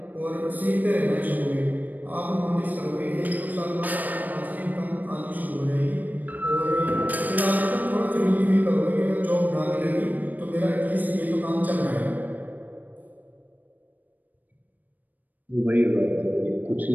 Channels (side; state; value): left; late; 0.084 ms